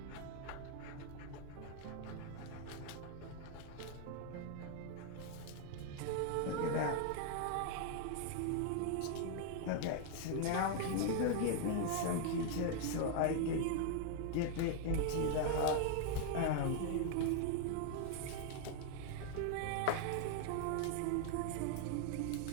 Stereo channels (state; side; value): different; both; correlation 0.00